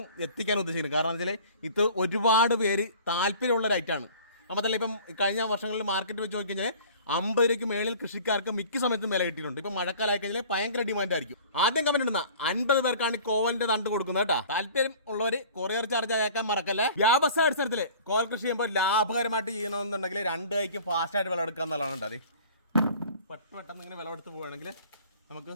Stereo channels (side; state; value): both; inverted; correlation -0.46